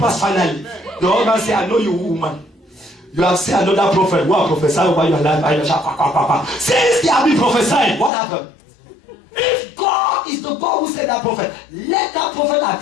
finally? The husband said, I know you, woman. You have seen another prophet who have prophesied over your life. Since they have been prophesying, what happened? If God is the God who said that prophet, let that prophet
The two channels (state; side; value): drops out; right; at 8.1 s